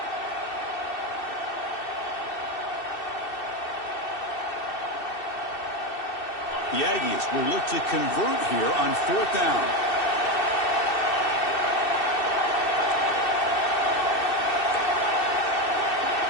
The Aggies will look to convert here on 4th down.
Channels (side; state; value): right; late; 2.6 ms